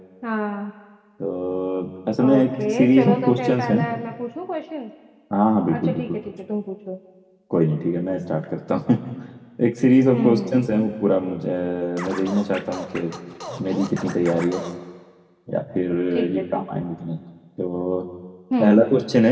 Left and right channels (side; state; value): both; identical; correlation 1.00